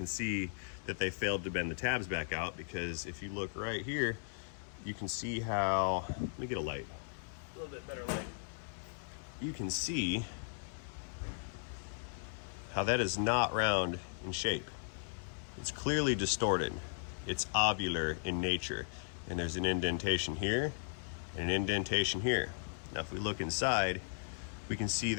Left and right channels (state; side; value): silent; right; digital silence